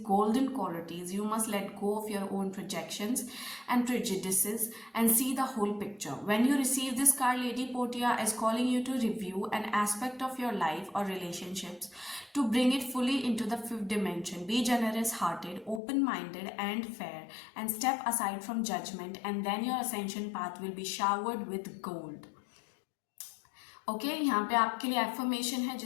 golden qualities, you must let go of your own projections and prejudices and see the whole picture. When you receive this card, Lady Portia is calling you to review an aspect of your life or relationships to bring it fully into the fifth dimension. Be generous hearted, open minded, and fair, and step aside from judgment, and then your ascension path will be showered with gold. Okay यहाँ पे आपके लिए एफर्मेशन है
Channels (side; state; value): right; drops out; at 15.8 s